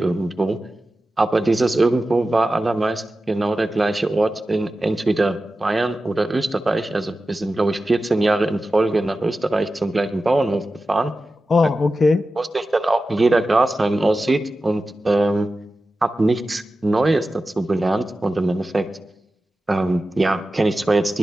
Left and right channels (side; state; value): both; normal; correlation 0.93